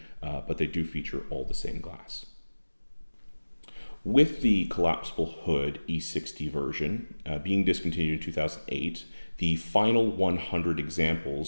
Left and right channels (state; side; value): inverted; both; correlation -1.00